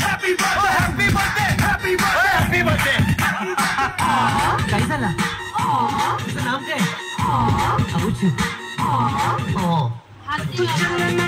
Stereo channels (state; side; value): identical; both; correlation 1.00